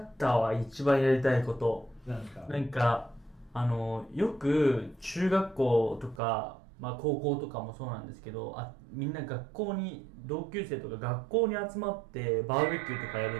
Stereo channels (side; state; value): left; drops out; at 6.2 s